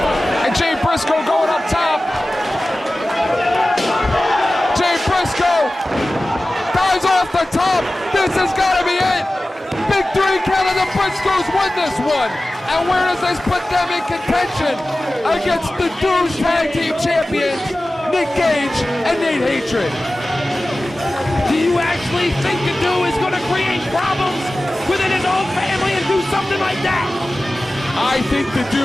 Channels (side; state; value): both; normal; correlation 0.96